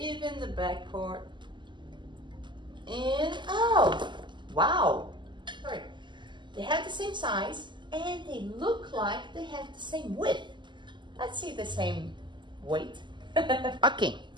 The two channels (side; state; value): left; late; 0.22 ms